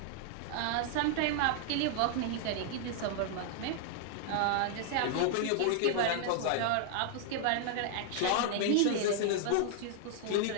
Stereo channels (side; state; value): both; different; correlation 0.00